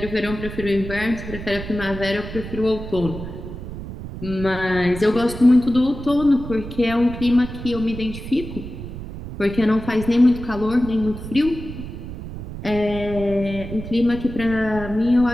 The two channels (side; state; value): right; noise; rumble, 10 dB below the sound